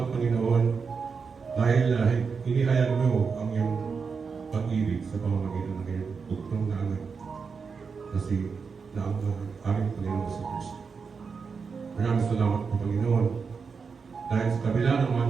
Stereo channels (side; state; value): left; quieter; 5.4 dB